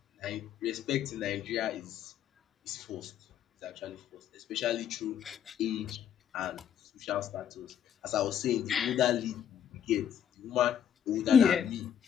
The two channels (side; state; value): right; quieter; 9.0 dB